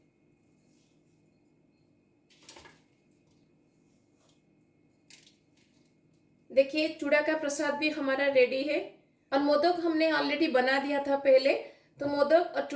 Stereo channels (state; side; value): identical; both; correlation 1.00